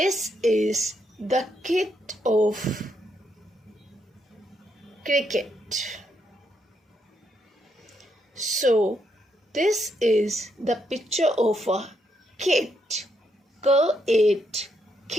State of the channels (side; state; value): both; normal; correlation 0.78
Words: is the kit of cricket. So this is the picture of a kit. K-it,